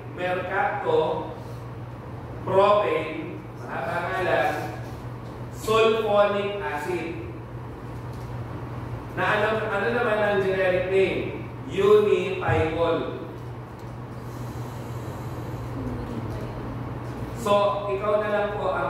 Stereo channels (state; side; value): identical; both; correlation 1.00